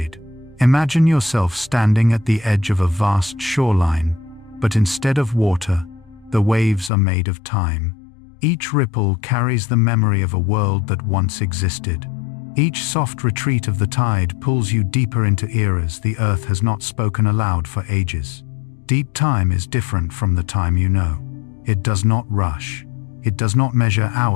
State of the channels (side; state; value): right; drops out; at 6.9 s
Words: Imagine yourself standing at the edge of a vast shoreline, but instead of water, the waves are made of time. Each ripple carries the memory of a world that once existed. Each soft retreat of the tide pulls you deeper into eras the earth has not spoken aloud for ages. Deep time is different from the time you know. It does not rush. It does not measure